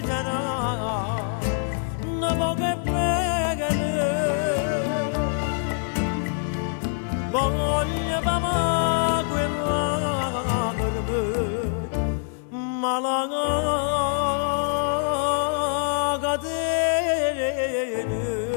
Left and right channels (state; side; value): silent; right; 62 dB below the other